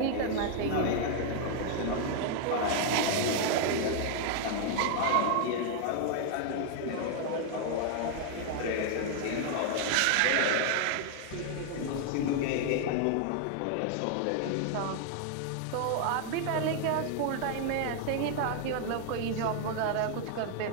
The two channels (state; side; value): different; both; correlation 0.00